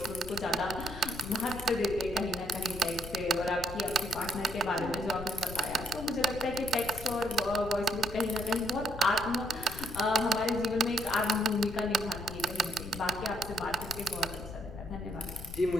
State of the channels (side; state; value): left; noise; rumble, 11 dB below the sound